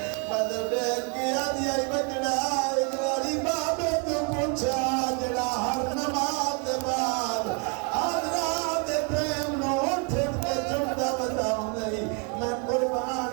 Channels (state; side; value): quieter; left; 35.7 dB